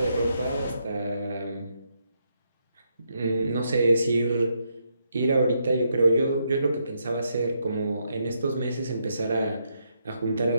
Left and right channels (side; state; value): both; inverted; correlation -0.78